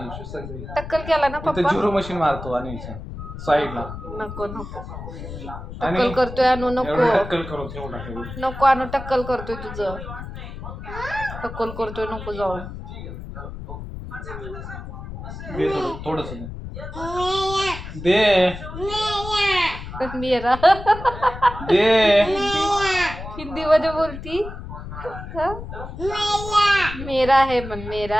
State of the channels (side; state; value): left; noise; rumble, 10 dB below the sound